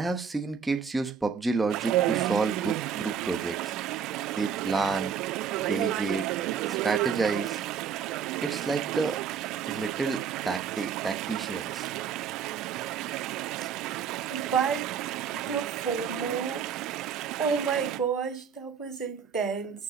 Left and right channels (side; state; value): left; quieter; 6.7 dB